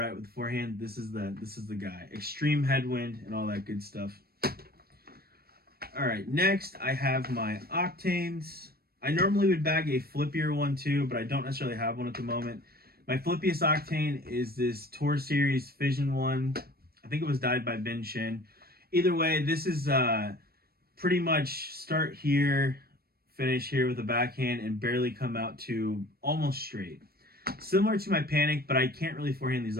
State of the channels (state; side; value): late; left; 0.45 ms